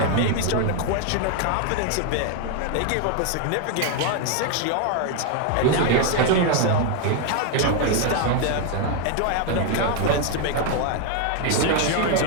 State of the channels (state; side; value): different; both; correlation 0.01